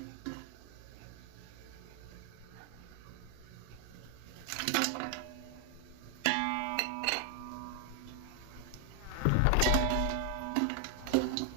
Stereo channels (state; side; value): different; both; correlation 0.00